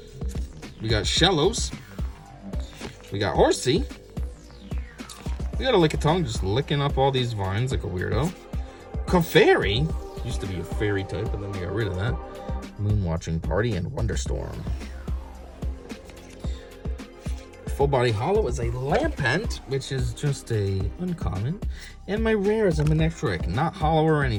We got Shellos. We got Horsey. We got a Lickitung just licking up all these vines like a weirdo. Clefairy. Used to be a fairy type, but then we got rid of that. Moonwatching Party and Wonderstorm. Full body holo is a Lampent, which is just a uncommon. And my rare is a Manectric, not hollow or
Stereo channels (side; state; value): both; identical; correlation 1.00